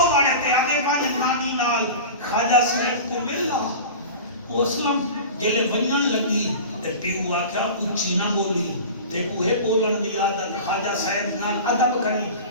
باڑے تے آدھے والی نانی نال خواجہ صاحب کو ملنا وہ اسلام جلے ونجن لگی تے پیو آکھا اچھی نہ بولی تے کوہے بولن دی عادت خواجہ صاحب نال ادب کرنی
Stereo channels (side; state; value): both; inverted; correlation -0.33